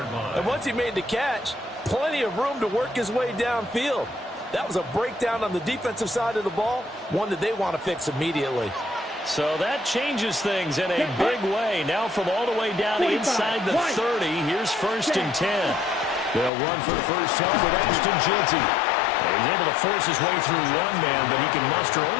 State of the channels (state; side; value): drops out; right; at 16.5 s